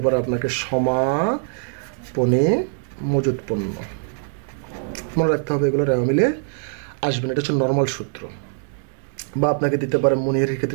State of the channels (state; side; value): silent; left; 64 dB below the other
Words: পারে আপনাকে সমাপনী মজুত পণ্য, মনে রাখতে হবে এগুলো রেওয়া মিলে আসবে না, এটা হচ্ছে নর্মাল সূত্র। বা আপনাকে দিতে পারে মণিহারির